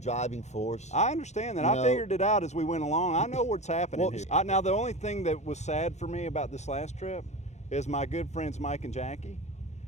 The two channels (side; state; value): right; late; 0.33 ms